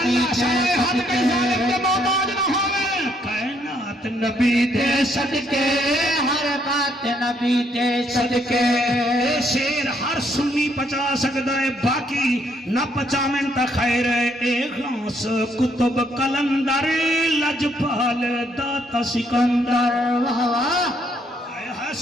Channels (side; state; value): both; normal; correlation 0.71